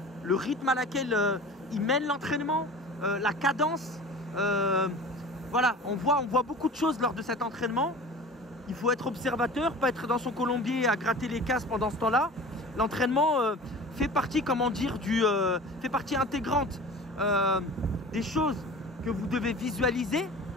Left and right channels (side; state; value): both; normal; correlation 0.39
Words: le rythme à laquelle ils mènent l'entraînement, la cadence. Voilà, on voit beaucoup de choses lors de cet entraînement. Il faut être observateur, pas être dans son colombier à gratter les casses pendant ce temps-là. L'entraînement fait partie, comment dire, fait partie intégrante des choses que vous devez visualiser